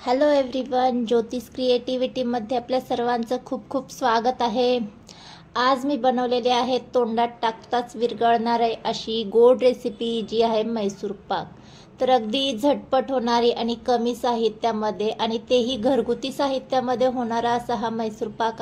हॅलो एव्हरीवन, ज्योतिष क्रिएटिव्हिटीमध्ये आपल्या सर्वांचं खूप खूप स्वागत आहे। आज मी बनवलेली आहे तोंडात टाकताच विरघळणारी अशी गोड रेसिपी जी आहे मैसूर पाक। तर अगदी झटपट होणारी आणि कमी साहित्यामध्ये आणि तेही घरगुती साहित्यामध्ये होणारा असा हा मैसूर पाक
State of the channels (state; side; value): identical; both; correlation 1.00